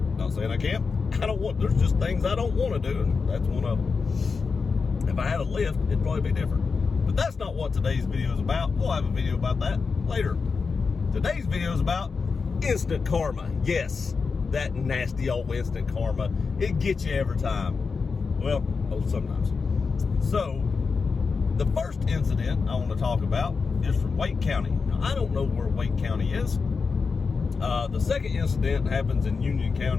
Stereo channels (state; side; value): quieter; right; 4.9 dB